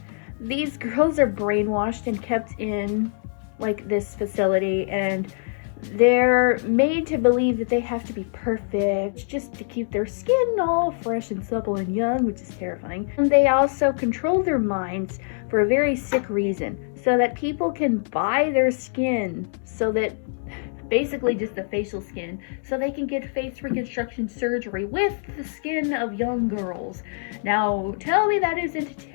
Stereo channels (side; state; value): right; silent; digital silence